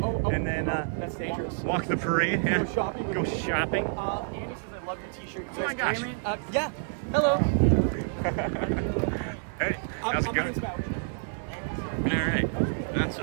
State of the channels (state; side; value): silent; left; digital silence